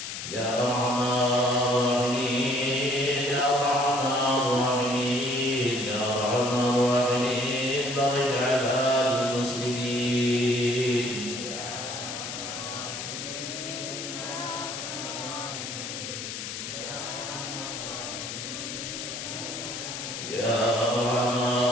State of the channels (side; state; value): left; noise; hiss, 6 dB below the sound